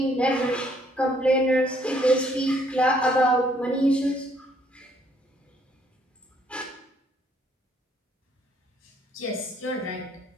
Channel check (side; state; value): both; normal; correlation 0.66